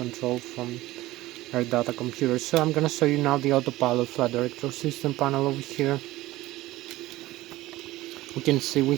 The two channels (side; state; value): left; quieter; 17.4 dB